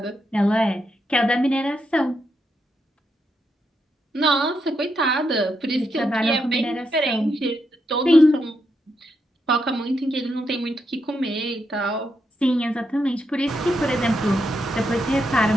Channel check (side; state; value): both; normal; correlation 0.82